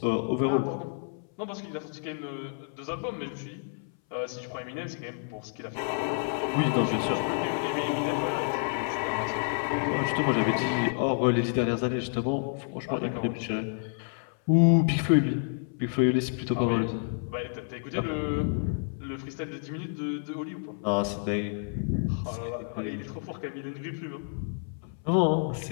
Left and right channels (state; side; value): silent; right; 58 dB below the other